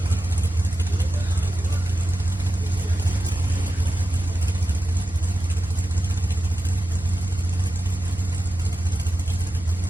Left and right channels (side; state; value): right; noise; hum, 18 dB below the sound